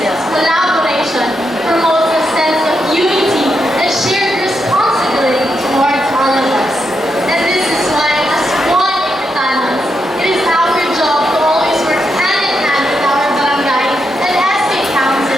since collaboration promotes a sense of unity and shared responsibility towards all of us. And this is why, as one Igpitanans, it is our job to always work hand in hand with our barangay and SK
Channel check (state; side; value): normal; both; correlation 0.83